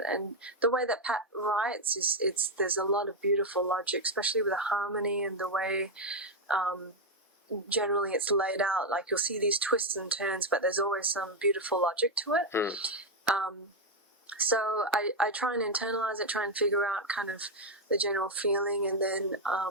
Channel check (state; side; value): normal; both; correlation 0.04